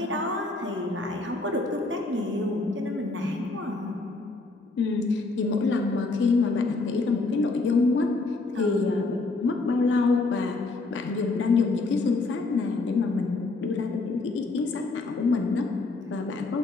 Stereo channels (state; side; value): quieter; right; 3.4 dB